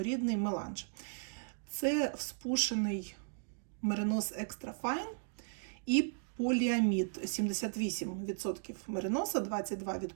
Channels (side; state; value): left; silent; digital silence